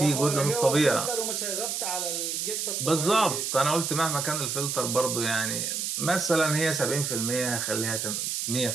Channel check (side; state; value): right; noise; hiss, 2 dB below the sound